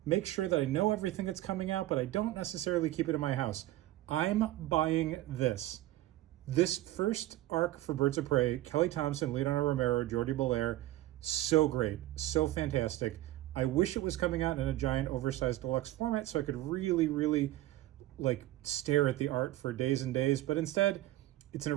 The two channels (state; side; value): quieter; left; 15.7 dB